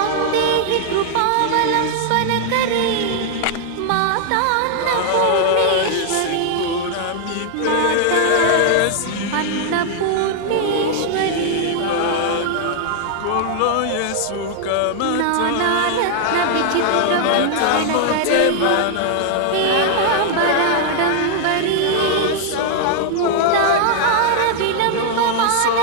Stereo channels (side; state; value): both; different; correlation -0.01